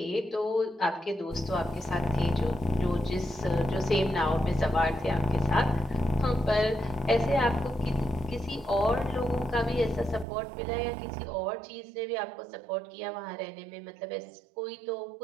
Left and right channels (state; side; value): drops out; left; at 10.2 s